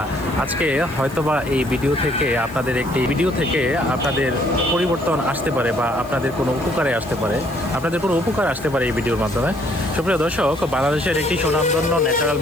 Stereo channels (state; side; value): noise; left; hiss, 23 dB below the sound